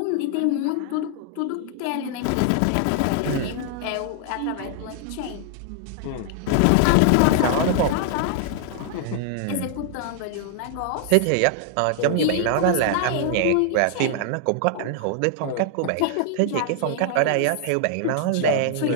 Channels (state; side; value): different; both; correlation 0.00